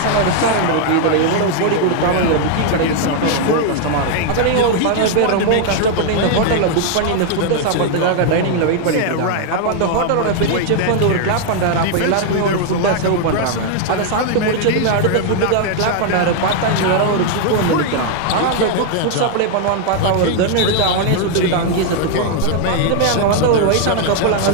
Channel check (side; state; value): both; different; correlation 0.00